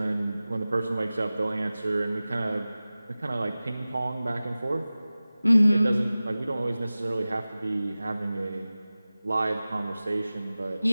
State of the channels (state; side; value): inverted; both; correlation -0.97